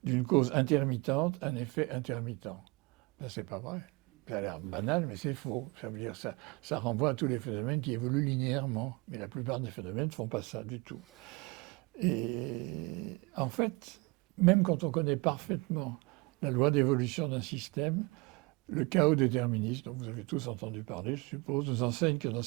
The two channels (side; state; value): left; quieter; 25.9 dB